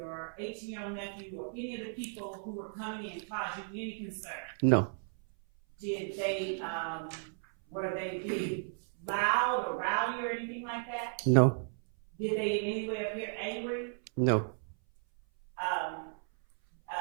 18-year-old nephew or any of the people who were coming in cause you any concern? No, Did they, were they being loud or rowdy or anything like that? no, Did they in any way appear angry? no.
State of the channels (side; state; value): left; silent; 55 dB below the other